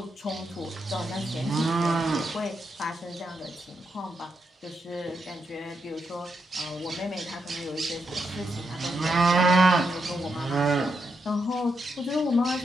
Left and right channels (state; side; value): normal; both; correlation 0.82